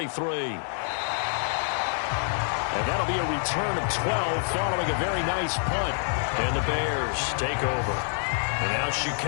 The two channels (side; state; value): right; silent; digital silence